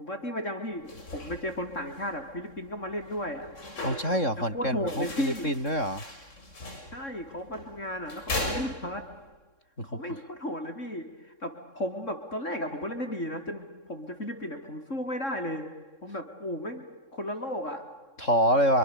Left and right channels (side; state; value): right; late; 3.7 ms